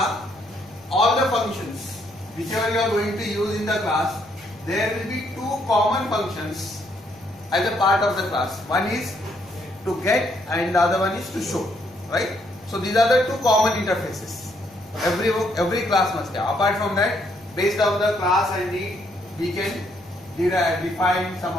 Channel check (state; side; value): normal; both; correlation 0.72